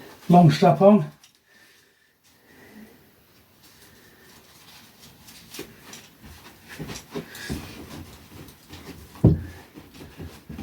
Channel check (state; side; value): identical; both; correlation 1.00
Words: Long strap on.